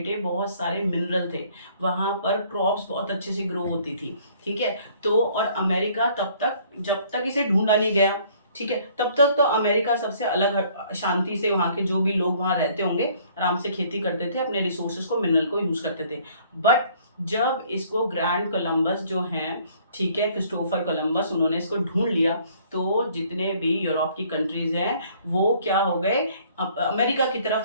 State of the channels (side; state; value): both; inverted; correlation -0.59